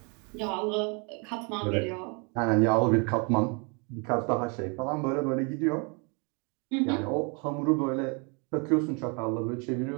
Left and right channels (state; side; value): quieter; left; 33.8 dB